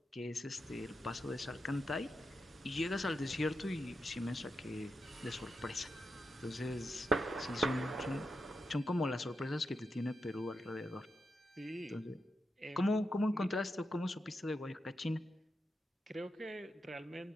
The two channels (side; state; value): both; normal; correlation 0.87